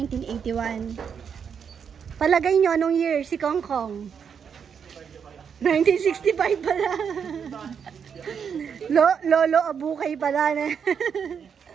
Palagay nyo anong year si Kong Kong? 1965 pala. Lolo Abukay pala na.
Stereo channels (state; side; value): quieter; left; 7.1 dB